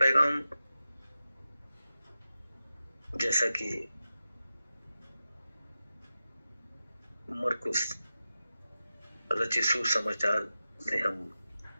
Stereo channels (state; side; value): inverted; both; correlation -0.92